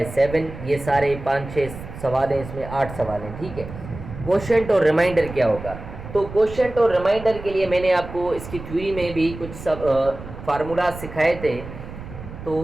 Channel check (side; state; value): right; noise; rumble, 12 dB below the sound